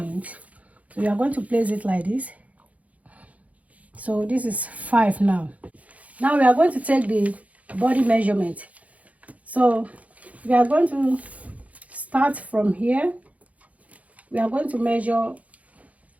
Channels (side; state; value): left; late; 0.069 ms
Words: So we are going to place it like this. So this is 5 now. Now we are going to take the body measurement. So we are going to start from here. We are going to measure